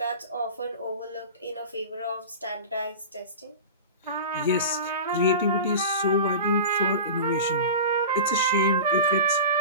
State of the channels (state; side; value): inverted; both; correlation -0.32